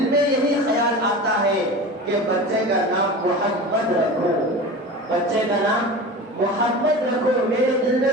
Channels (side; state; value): both; normal; correlation 0.32